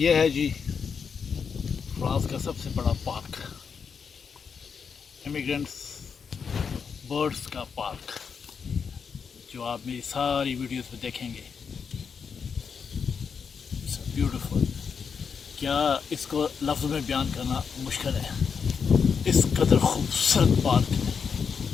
है जी France का सबसे बड़ा park, immigrants birds का park, जो आप मेरी सारी वीडियोस में देखेंगे। It's beautiful. क्या इसको लफ्ज़ में बयान करना मुश्किल है। इस कदर खूबसूरत पार्क है।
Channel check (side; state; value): right; quieter; 6.2 dB